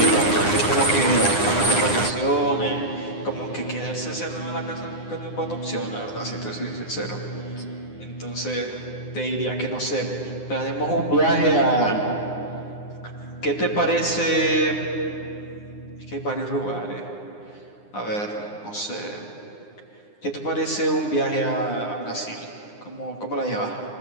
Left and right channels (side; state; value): right; late; 9.8 ms